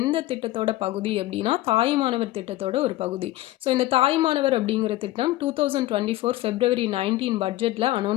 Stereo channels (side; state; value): right; quieter; 16.4 dB